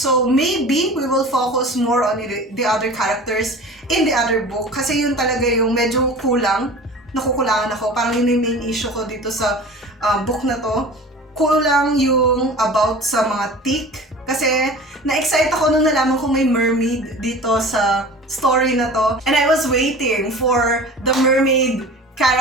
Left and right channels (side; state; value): both; normal; correlation 0.39